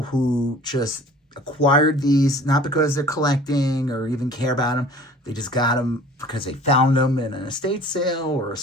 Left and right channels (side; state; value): both; normal; correlation 0.47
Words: who just acquired these not because they're collecting or even care about them. They just got them because they found them in an estate sale or a